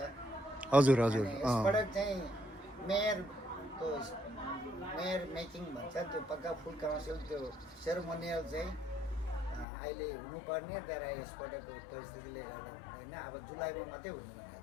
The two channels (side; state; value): right; drops out; at 9.7 s